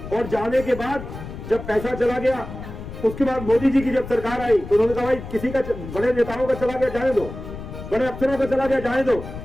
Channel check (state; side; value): noise; left; rumble, 11 dB below the sound